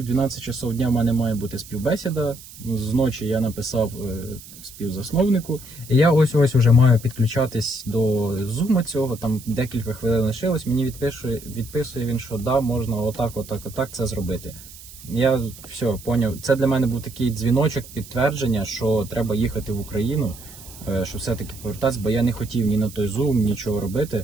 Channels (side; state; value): right; noise; hiss, 18 dB below the sound